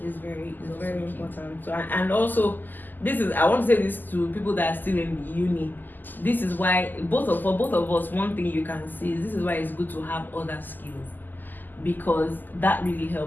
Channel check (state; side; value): late; right; 0.087 ms